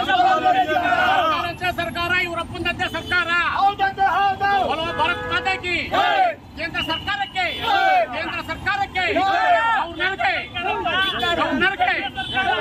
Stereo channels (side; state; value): both; identical; correlation 1.00